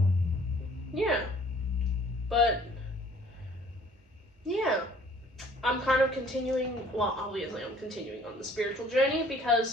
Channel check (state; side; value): normal; both; correlation 0.55